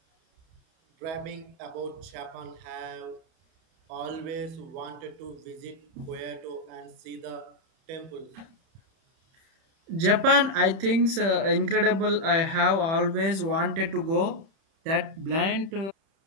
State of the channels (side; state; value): left; late; 31 ms